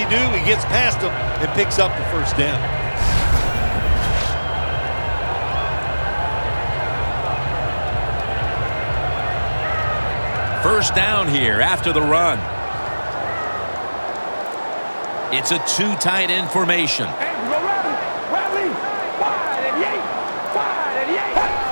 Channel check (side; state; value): both; inverted; correlation -1.00